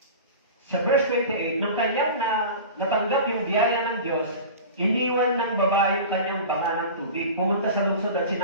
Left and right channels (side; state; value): both; inverted; correlation -0.34